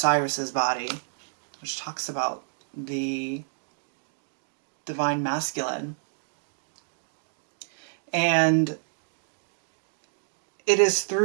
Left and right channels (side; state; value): left; silent; digital silence